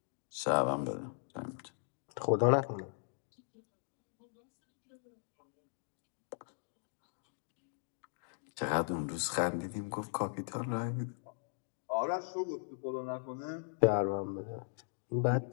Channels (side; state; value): right; silent; digital silence